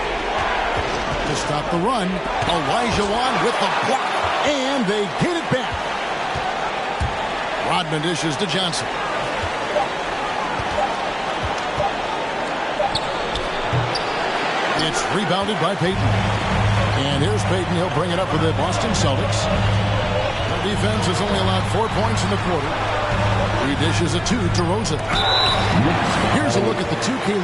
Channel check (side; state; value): both; identical; correlation 1.00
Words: To stop the run, Olajuwon with the block, and they get it back. Rodman dishes to Johnson. It's rebounded by Payton. And here's Payton. He'll bring it up for the Boston Celtics. Their defense has only allowed 4 points in the quarter. He dishes a 2 to Rosen. Here's a look at the 2K